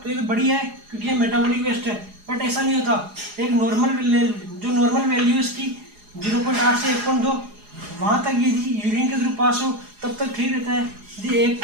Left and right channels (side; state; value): left; late; 4.8 ms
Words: तो ये तो बढ़िया है क्योंकि ये मेटाबॉलिक वेस्ट है, बट ऐसा नहीं होता। एक नॉर्मल वैल्यू इसकी 0.8 से 1.2 वहाँ तक यदि यूरिन के थ्रू पास हो तब तक ठीक रहता है। यदि